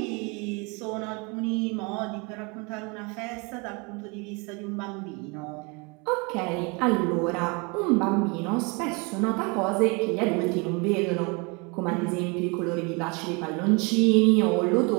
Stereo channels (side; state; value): left; quieter; 30.0 dB